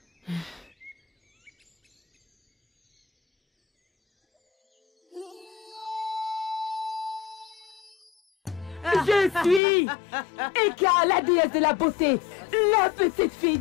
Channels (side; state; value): right; drops out; at 9.6 s